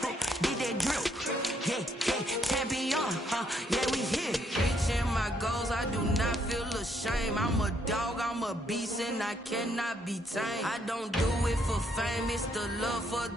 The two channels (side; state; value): both; normal; correlation 0.72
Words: did that drip. Yeah, champion, yeah, we here. Reaching my goals, I do not feel ashamed. I'm a dog, I'm a beast, and I cannot be tamed. I don't do it for fame, it's the love for